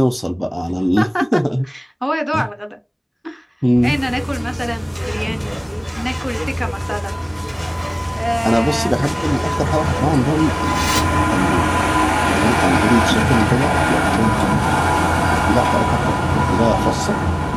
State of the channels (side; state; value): both; identical; correlation 1.00